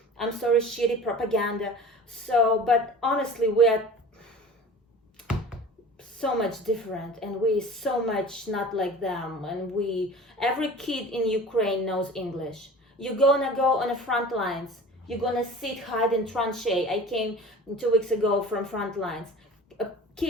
I'm sorry, shitty propaganda. So, but honestly, we are so much different, and we so much not like them. And every kid in Ukraine knows English. You're gonna go on the front lines. You're gonna sit, hide in tranchee. I came 2 weeks ago from front lines.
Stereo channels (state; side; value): normal; both; correlation 0.40